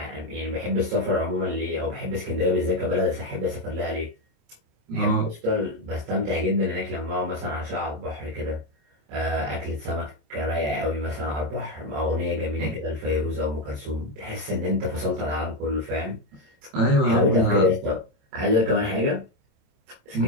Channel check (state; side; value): late; left; 27 ms